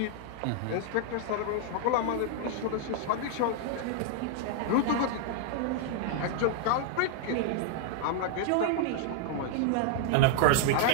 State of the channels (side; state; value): both; different; correlation -0.01